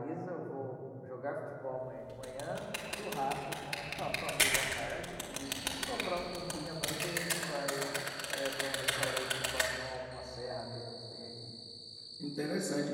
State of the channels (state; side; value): identical; both; correlation 1.00